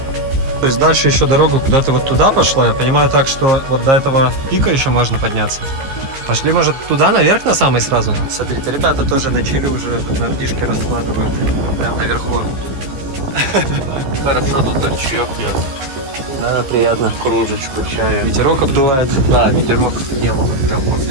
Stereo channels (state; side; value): late; left; 15 ms